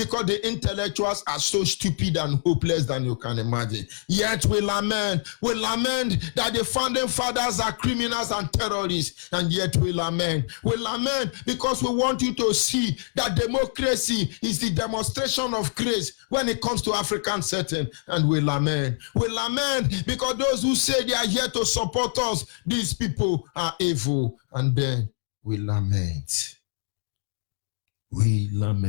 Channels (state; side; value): silent; right; digital silence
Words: the intellectuals are so stupid and hopeless than you can imagine. Yet we lament that the founding fathers are criminals and terrorists, and yet we lament because we want you to see that democracy is the demonstration of grace when it comes to African setting, and we lament because those who say they are here to support us, these people are evil, and then we lament.